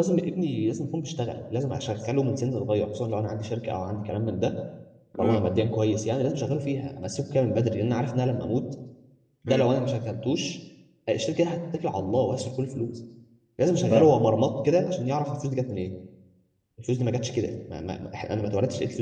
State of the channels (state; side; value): identical; both; correlation 1.00